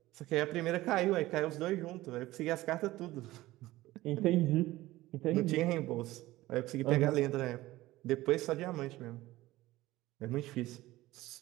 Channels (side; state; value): left; quieter; 17.5 dB